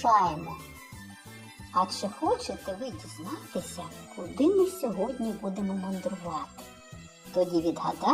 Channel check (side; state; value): both; identical; correlation 1.00